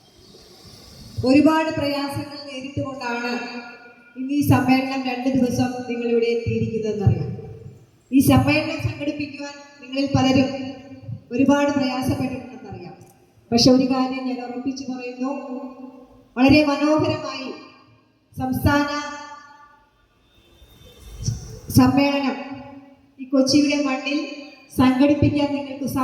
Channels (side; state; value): both; identical; correlation 1.00